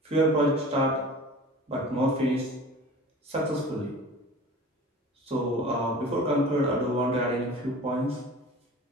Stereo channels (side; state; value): both; normal; correlation 0.40